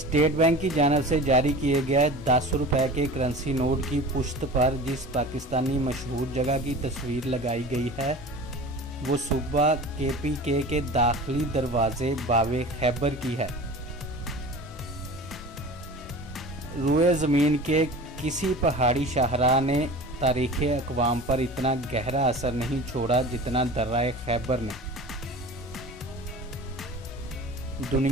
Bank की जानिब से जारी किए गए 10 रुपए के करेंसी नोट की पुश्त पर जिस पाकिस्तानी मशहूर जगह की तस्वीर लगाई गई है वो सूबा KPK के दाखिली दरवाजे बावे खैबर की है। रुए ज़मीन के किसी पहाड़ी शाहराह ने तारीख़ अक़वाम पर इतना गहरा असर नहीं छोड़ा जितना दर्राए खैबर ने।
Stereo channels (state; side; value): normal; both; correlation 0.37